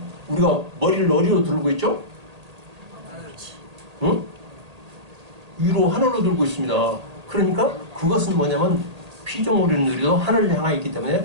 우리가 머리를 어디로 들고 있죠? 응? 위로 하늘로 들고 있습니다. 그러니까 그것은 뭐냐면 피조물들도 하늘을 향하여 있기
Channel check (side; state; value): left; late; 1.8 ms